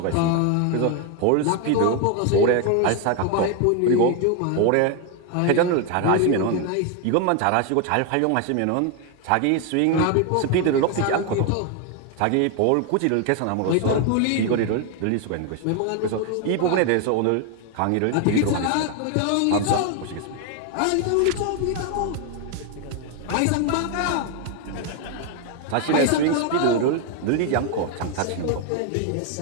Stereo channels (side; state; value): both; different; correlation 0.01